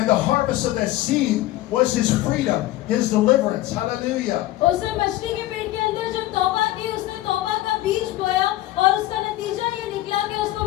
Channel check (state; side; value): quieter; right; 15.8 dB